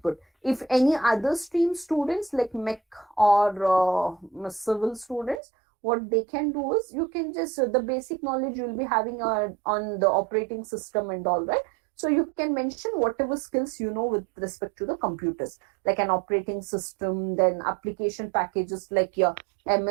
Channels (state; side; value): drops out; left; at 5.4 s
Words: If any other stream students like mech or civil students, what they can do is you can just the basic knowledge you will be having on the operating system and all, right? So you can mention whatever skills you know with respect to the computers, like an operating system, then application packages like your